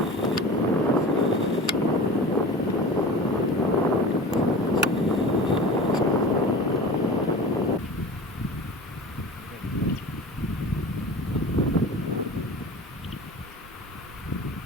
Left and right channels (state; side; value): normal; both; correlation 0.36